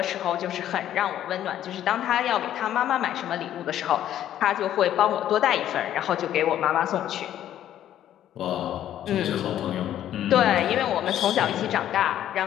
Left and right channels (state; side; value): quieter; right; 11.5 dB